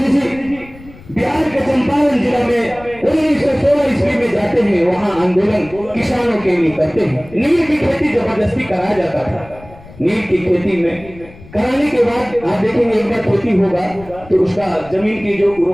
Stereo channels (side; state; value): left; noise; rumble, 20 dB below the sound